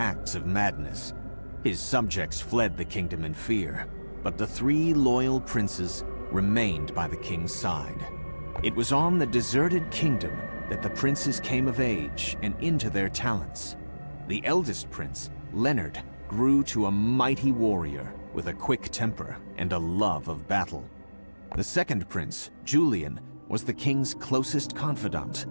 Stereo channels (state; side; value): inverted; both; correlation -1.00